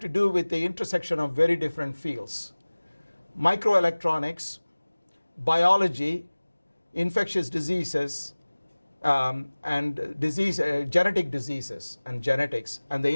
do with the intersection of very different fields: microelectronics, biology, infectious diseases, and genetic diseases and genetics and the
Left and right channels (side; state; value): both; inverted; correlation -1.00